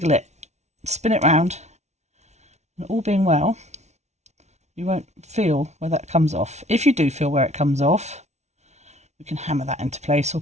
it, spin it round, and all being well, you won't feel where that comes off. If you do feel where it comes off, you can hammer that into place or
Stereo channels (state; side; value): late; left; 0.32 ms